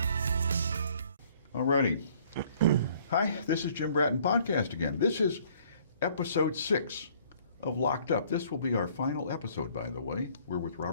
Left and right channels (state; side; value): inverted; both; correlation -0.59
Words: Alrighty. Hi, this is Jim Bratton Podcast again. This is episode 6 of Locked Up. This will be our final episode, by the way. We're with